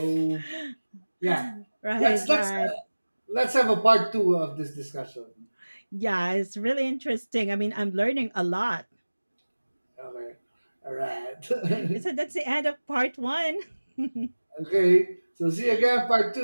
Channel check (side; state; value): both; inverted; correlation -1.00